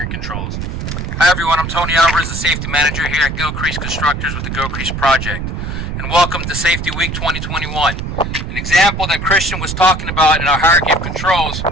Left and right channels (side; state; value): right; noise; rumble, 4 dB below the sound